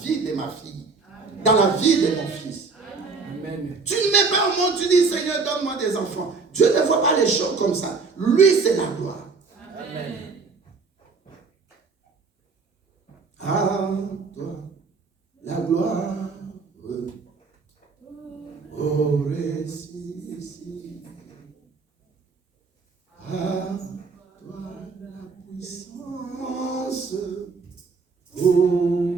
de ma fille, dans la vie de mon fils. Amen. Tu ne mets pas au monde, tu dis, Seigneur, donne-moi des enfants. Dieu ne voit pas les choses comme ça. Lui, c'est la gloire. Amen. À toi, la gloire. Oh, récit. À toi, la puissance. Oh,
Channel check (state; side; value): quieter; left; 4.6 dB